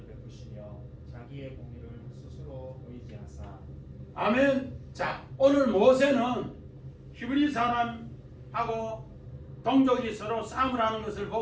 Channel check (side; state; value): both; identical; correlation 1.00